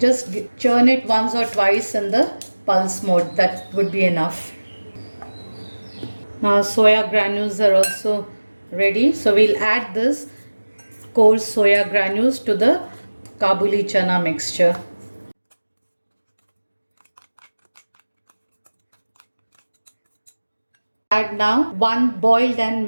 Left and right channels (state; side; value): inverted; both; correlation -1.00